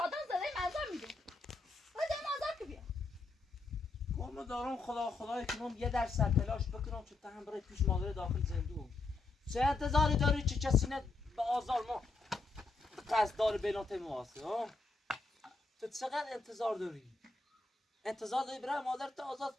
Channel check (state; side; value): quieter; right; 3.6 dB